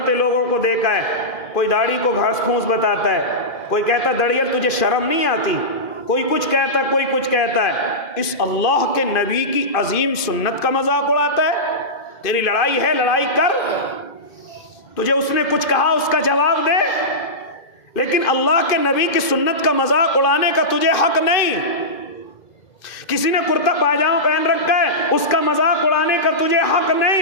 لوگوں کو دیکھا ہے، کوئی داڑھی کو گھاس پھوس بتاتا ہے، کوئی کہتا دڑیل تجھے شرم نہیں آتی، کوئی کچھ کہتا ہے، کوئی کچھ کہتا ہے۔ اس اللہ کے نبی کی عظیم سنت کا مذاق اڑاتا ہے۔ تیری لڑائی ہے، لڑائی کر، تجھے اس نے کچھ کہا اس کا جواب دے، لیکن اللہ کے نبی کی سنت کا مذاق اڑانے کا تجھے حق نہیں۔ کسی نے کرتا پاجامہ پہن رکھا ہے، اس کا مذاق اڑانے کا تجھے حق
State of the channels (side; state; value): right; late; 2.5 ms